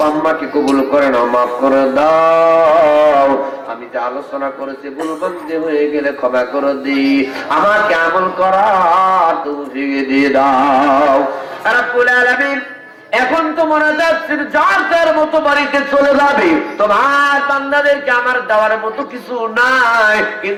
আম্মাকে কবুল করে নাও, মাফ করে দাও। আমি যে আলোচনা করেছি ভুলভ্রান্তি হয়ে গেলে ক্ষমা করে দিই, আমাকে আমল করার তৌফিক দিয়ে দাও রব্বুল আলামিন। এখন তো মনে যাচ্ছে যার যার মতো বাড়িতে চলে যাবে, তোমার বান্দাদেরকে আমার দেওয়ার মতো কিছু নাই,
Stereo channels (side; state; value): both; identical; correlation 1.00